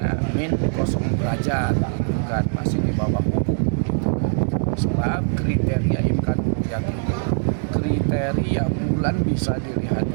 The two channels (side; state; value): left; silent; 64 dB below the other